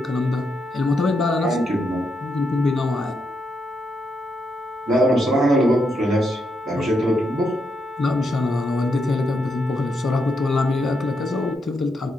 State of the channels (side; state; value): both; normal; correlation 0.81